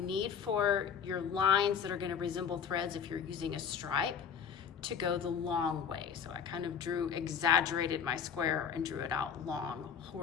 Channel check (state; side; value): quieter; right; 7.2 dB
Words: need for your lines that are gonna resemble threads if you're using a stripe to go the long way. So I kind of exaggerated my square and drew it out long